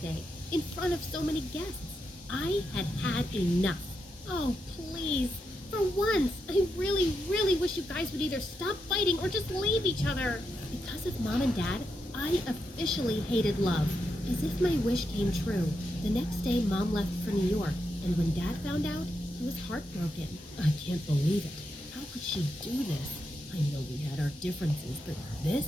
in front of so many guests. I had had enough. Oh, please. For once, I really, really wish you guys would either stop fighting or just leave each other. Because of Mom and Dad, I officially hated love. As if my wish came true, the next day Mom left for New York, and when Dad found out, he was heartbroken. I can't believe it. How could she do this? I know we had our differences, but this?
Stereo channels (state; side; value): normal; both; correlation 0.84